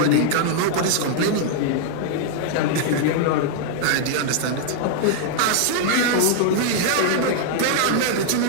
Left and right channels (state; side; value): different; both; correlation -0.01